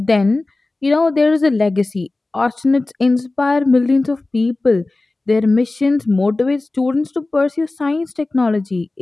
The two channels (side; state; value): right; quieter; 3.1 dB